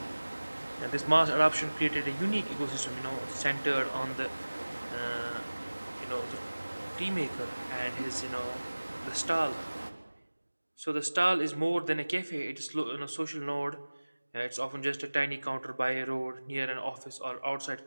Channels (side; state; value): both; inverted; correlation -1.00